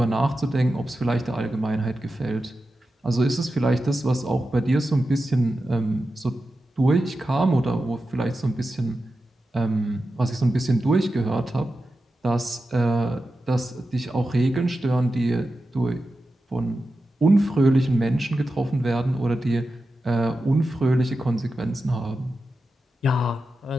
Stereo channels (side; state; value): both; normal; correlation 0.91